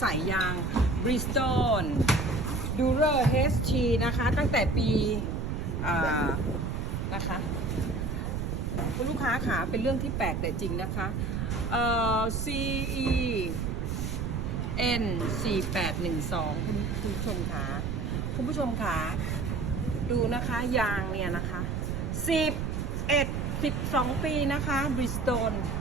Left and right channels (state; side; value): noise; right; rumble, 2 dB below the sound